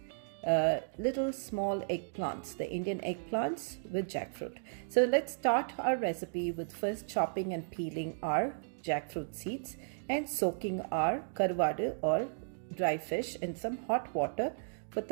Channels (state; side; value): silent; left; digital silence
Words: little small eggplants, the Indian eggplants with jackfruit. So let's start our recipe with first chopping and peeling our jackfruit seeds and soaking our karuvadu or dry fish in some hot water for